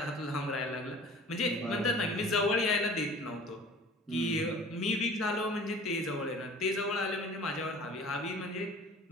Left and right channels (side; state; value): both; normal; correlation 0.45